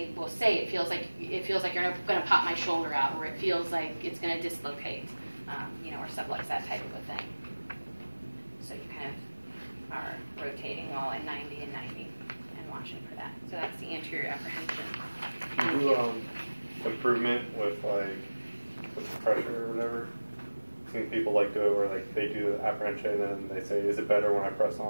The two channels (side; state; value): both; inverted; correlation -1.00